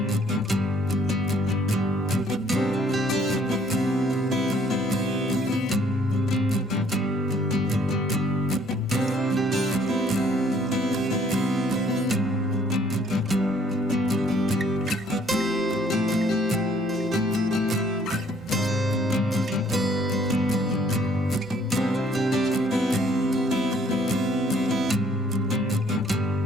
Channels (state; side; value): noise; right; hum, 28 dB below the sound